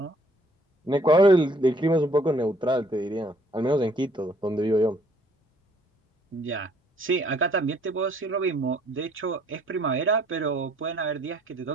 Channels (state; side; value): normal; both; correlation 0.61